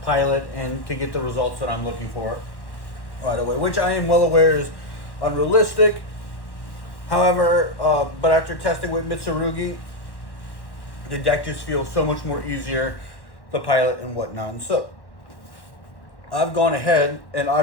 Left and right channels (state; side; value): late; right; 1.1 ms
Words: pilot and to get the results that I'm looking for right away, which I am well aware is unrealistic. However, but after testing with Mitsurugi, the deck just feels so much more easier to pilot and whatnot. And so I've gone ahead and